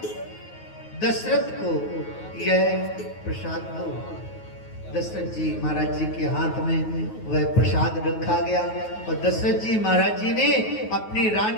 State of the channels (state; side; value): late; right; 9.3 ms